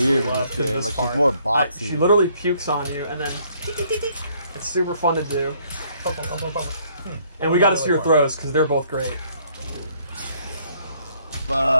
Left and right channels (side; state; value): both; inverted; correlation -0.65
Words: weird in love, this 'cause game. this Like part- she's more boxy. She literally pukes on you, and then it's super fun to do. And we got to see her throws because they're both great.